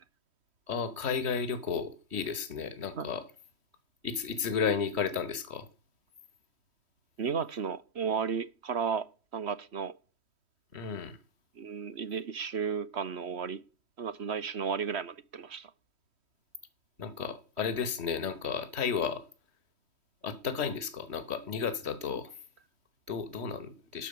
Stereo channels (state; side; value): late; left; 3.1 ms